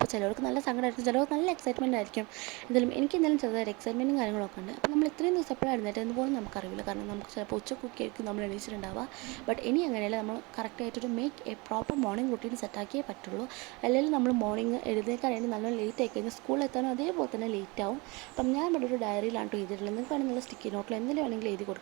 ചിലവർക്ക് നല്ല സങ്കടമായിരിക്കും, ചിലവർക്ക് നല്ല എക്സൈറ്റ്മെൻ്റ് ആയിരിക്കും. എന്തായാലും എനിക്ക് എന്തായാലും ചെറുതായിട്ട് എക്സൈറ്റ്മെൻറ്റും കാര്യങ്ങളൊക്കെ ഉണ്ട്. അപ്പോൾ നമ്മൾ ഇത്രയും ദിവസം എപ്പോഴായിരുന്നിട്ട് എന്ന് പോലും നമുക്കറിയില്ല. കാരണം നമുക്ക് ചിലപ്പോൾ ഉച്ചക്കൊക്കെ ആയിരിക്കും നമ്മൾ എണീച്ചിട്ടുണ്ടാവുക. ബട്ട് ഇനി അങ്ങനെയല്ല, നമ്മൾ കറക്റ്റായിട്ടൊരു make a proper morning routine സെറ്റാക്കിയേ പറ്റുള്ളൂ. അല്ലെങ്കിൽ നമ്മൾ മോർണിംഗ് എഴുന്നേൽക്കാനായിട്ട് നല്ലോണം ലേറ്റ് ആയി കഴിഞ്ഞാൽ സ്കൂളിൽ എത്താനും അതേപോലെ തന്നെ ലേറ്റ് ആവും. അപ്പം ഞാൻ ഇവിടെ ഒരു ഡയറിയിലാണ് എഴുതിയിട്ടുള്ളത്. നിങ്ങൾക്ക് വേണമെങ്കിൽ നല്ല സ്റ്റിക്കി നോട്ടിൽ എന്തെങ്കിലും വേണമെങ്കിൽ എഴുതി കൊടുക്കുക.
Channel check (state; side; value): quieter; left; 26.5 dB